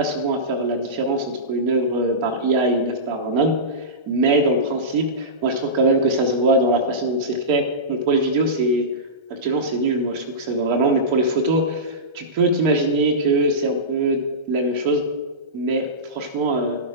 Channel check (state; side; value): late; left; 1.3 ms